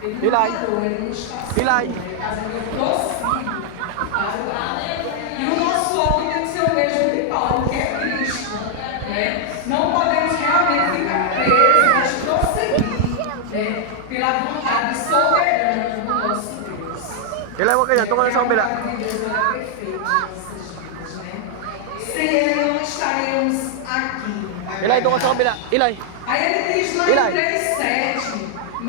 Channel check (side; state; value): both; different; correlation 0.00